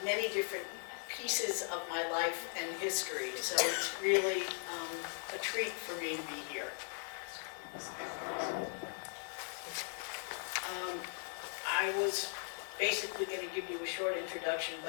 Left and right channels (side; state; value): right; silent; 52 dB below the other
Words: many different pieces of my life and history. So it's really a treat for me to be here. I was basically going to give you a short introduction,